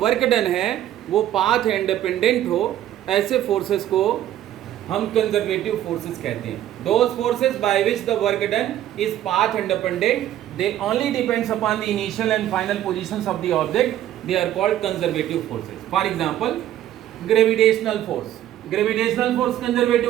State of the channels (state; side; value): quieter; left; 12.3 dB